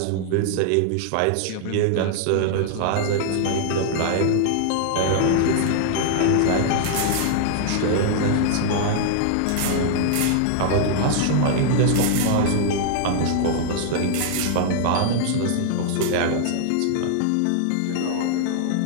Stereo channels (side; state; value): both; different; correlation 0.00